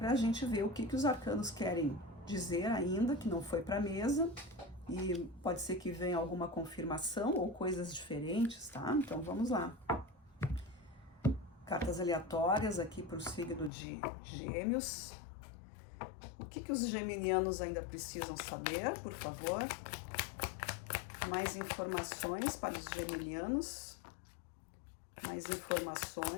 a gente ver o que os arcanos querem dizer ainda, que não foi para a mesa, e pode ser que venha alguma confirmação ou coisas diferentes, tá? Então vamos lá. Cartas aleatórias aqui para o signo de Gêmeos. O que os geminianos ainda precisam saber, por favor? Mais informações para os geminianos. Mais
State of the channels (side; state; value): right; drops out; at 13.7 s